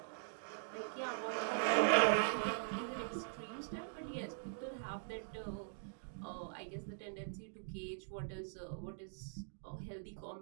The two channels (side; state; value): left; silent; digital silence